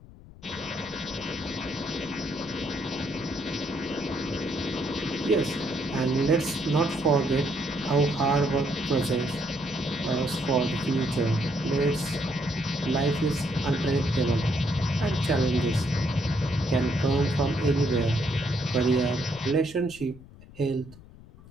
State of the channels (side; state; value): left; noise; rumble, 20 dB below the sound